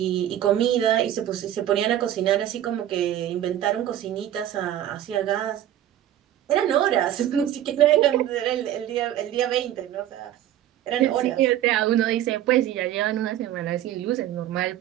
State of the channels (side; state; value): left; quieter; 12.0 dB